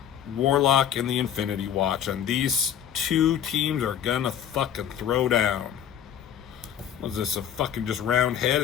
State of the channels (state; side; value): quieter; right; 9.4 dB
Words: Warlock, and the Infinity Watch. And these two teams are gonna fucking throw down. Was this a fucking just round head?